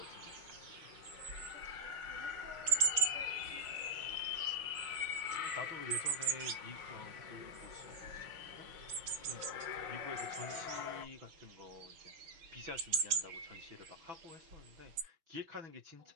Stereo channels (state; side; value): late; left; 6.2 ms